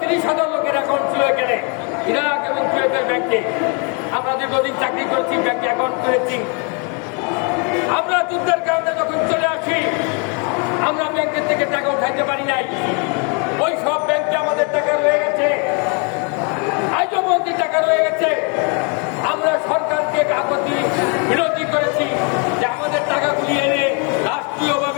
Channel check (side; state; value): right; quieter; 35.7 dB